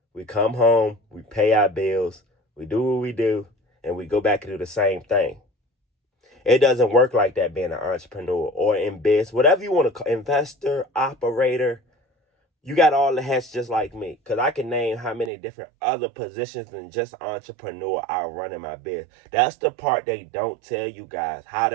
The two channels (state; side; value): drops out; left; at 15.3 s